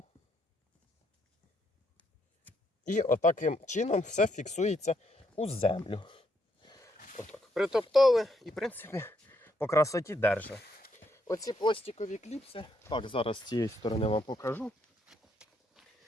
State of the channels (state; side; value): normal; both; correlation 0.75